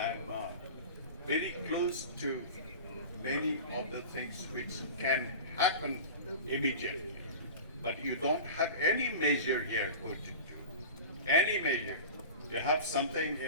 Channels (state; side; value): inverted; both; correlation -0.33